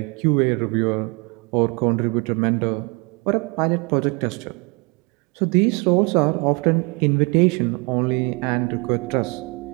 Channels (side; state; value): left; quieter; 29.5 dB